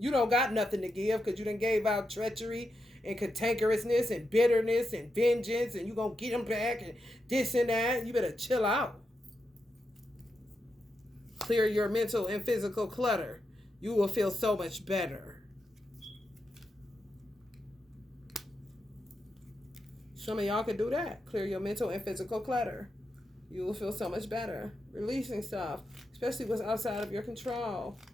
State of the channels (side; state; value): both; normal; correlation 0.86